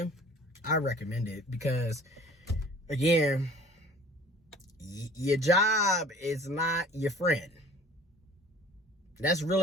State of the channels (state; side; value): normal; both; correlation 0.48